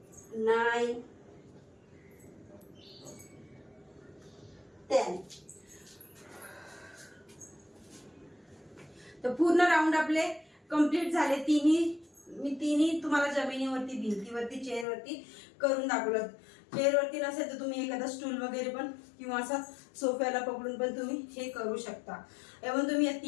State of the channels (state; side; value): drops out; right; at 14.9 s